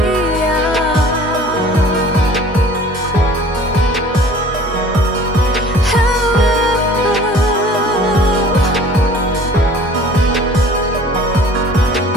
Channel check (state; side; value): normal; both; correlation 0.48